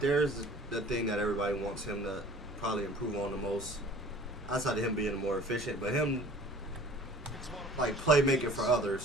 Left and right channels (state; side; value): normal; both; correlation 0.47